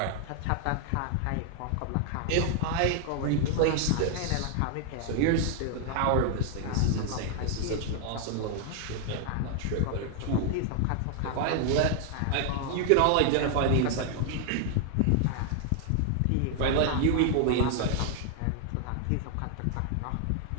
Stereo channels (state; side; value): different; both; correlation 0.00